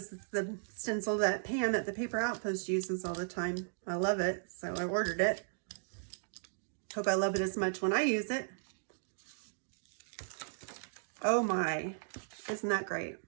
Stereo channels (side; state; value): left; silent; digital silence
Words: is the stencil that Pam at the Paper Outpost uses all the time. I love it, so I ordered it. Hope I love it as much when I use it. Oh my, isn't that great?